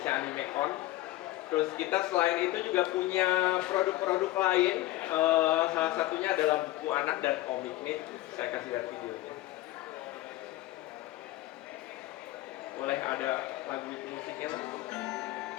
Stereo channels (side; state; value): right; quieter; 16.9 dB